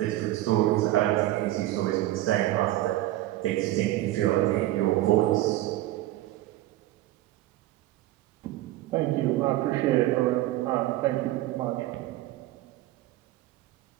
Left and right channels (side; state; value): left; quieter; 15.8 dB